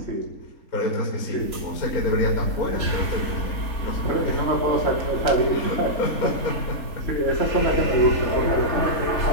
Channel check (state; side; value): late; right; 3.4 ms